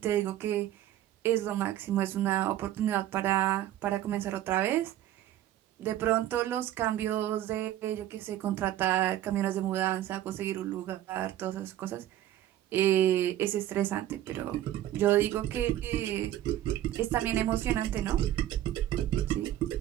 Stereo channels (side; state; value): left; quieter; 12.9 dB